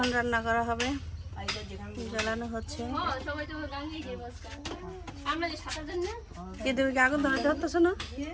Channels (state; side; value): identical; both; correlation 1.00